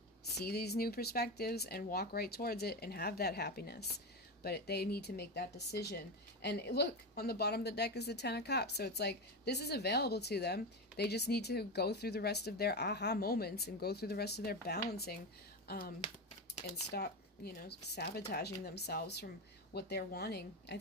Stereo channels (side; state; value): both; normal; correlation 0.17